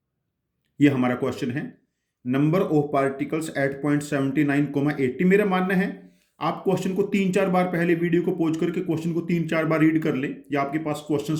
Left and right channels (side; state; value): both; identical; correlation 1.00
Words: ये हमारा क्वेश्चन है, number of particles at point 79 80। मेरा मानना है आप क्वेश्चन को 3-4 बार, पहले वीडियो को पॉज करके क्वेश्चन को 3-4 बार रीड कर ले, या आपके पास